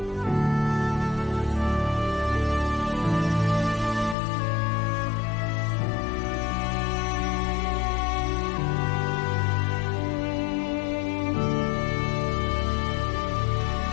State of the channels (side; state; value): right; drops out; at 4.2 s